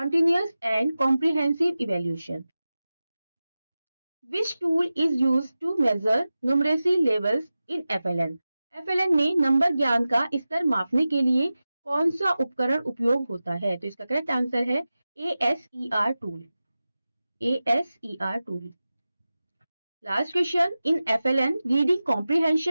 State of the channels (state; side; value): inverted; both; correlation -0.95